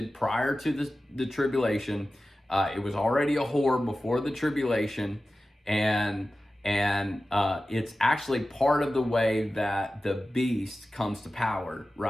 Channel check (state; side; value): normal; both; correlation 0.95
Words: prior to the tribulation. It was already a whore before the tribulation, and it's actually part of the way that the beast comes to power,